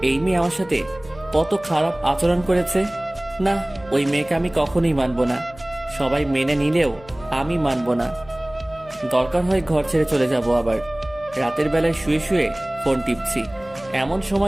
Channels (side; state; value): left; noise; hum, 21 dB below the sound